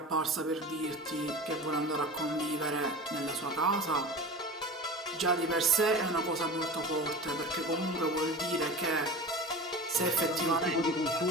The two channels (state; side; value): normal; both; correlation 0.33